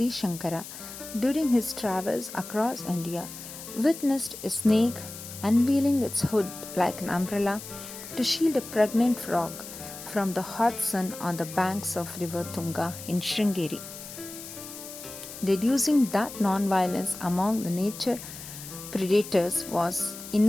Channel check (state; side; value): noise; left; hiss, 12 dB below the sound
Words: Shankara, during his travels across India, witnessed a snake unveiling its hood like an umbrella to shield a pregnant frog from the hot sun on the banks of river Tunga in Sringeri. Deducing that non-violence among the nature predators was